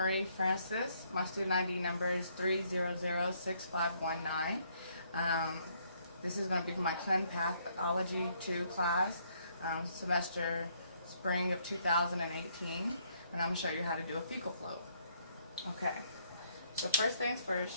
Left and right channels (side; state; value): both; inverted; correlation -0.69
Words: Francis. My student ID number is 3006519. This is going to be for my ClinicalPathologyII class, semester spring of 2018, and I'm going to show you how to do a fecal float. Okay, so first things